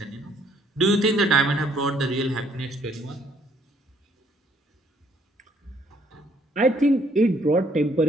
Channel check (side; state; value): both; normal; correlation 0.66